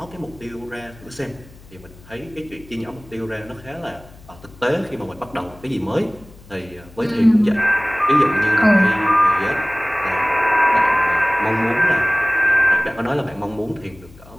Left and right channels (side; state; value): left; noise; hum, 22 dB below the sound